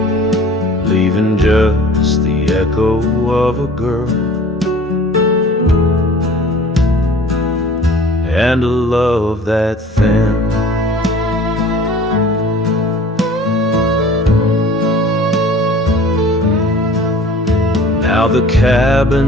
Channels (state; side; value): normal; both; correlation 0.46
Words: leaving just the echo of a girl and a love that thin. Now the